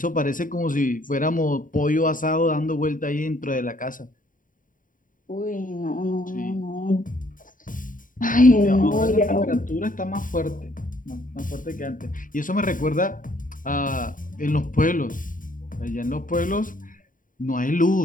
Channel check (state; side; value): late; right; 0.39 ms